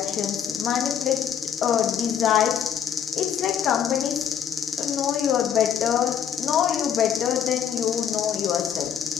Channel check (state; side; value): quieter; right; 8.1 dB